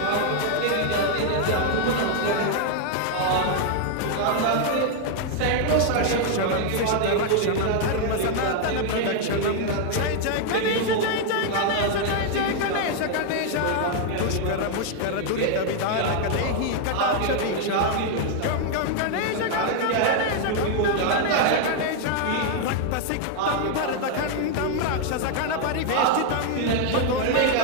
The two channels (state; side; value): different; both; correlation 0.00